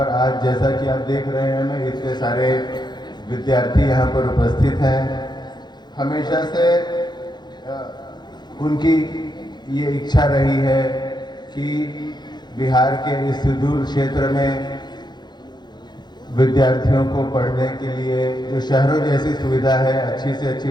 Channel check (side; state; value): right; late; 0.21 ms